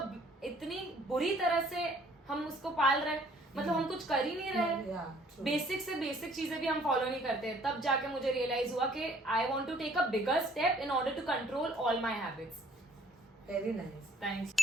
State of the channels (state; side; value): normal; both; correlation 0.60